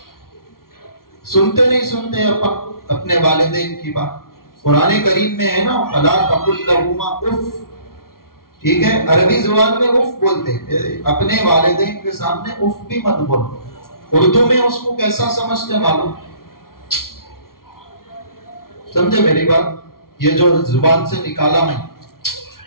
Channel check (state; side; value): late; right; 0.93 ms